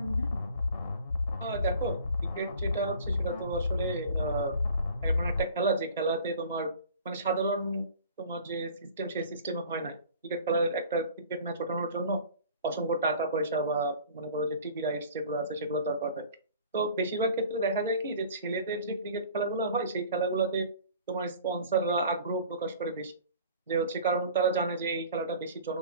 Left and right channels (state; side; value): inverted; both; correlation -0.46